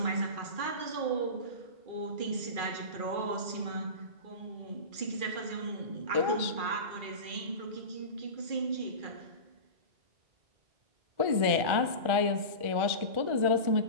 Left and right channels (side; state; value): left; late; 1.4 ms